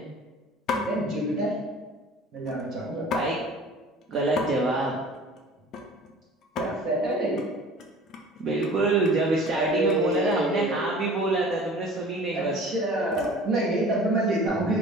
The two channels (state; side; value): normal; both; correlation 0.45